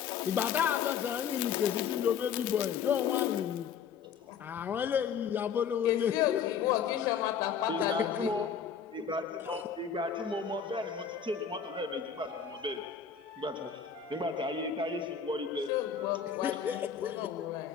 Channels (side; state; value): right; quieter; 7.3 dB